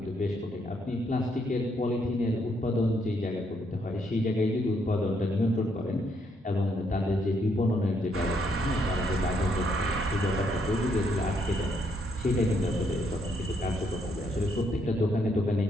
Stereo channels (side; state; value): both; normal; correlation 0.73